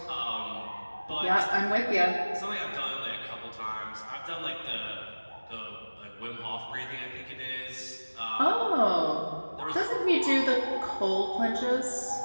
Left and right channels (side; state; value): both; inverted; correlation -1.00